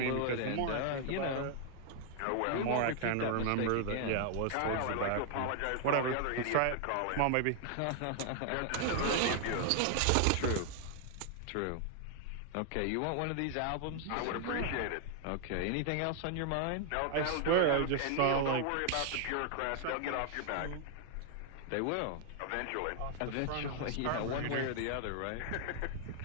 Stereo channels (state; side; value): different; both; correlation 0.00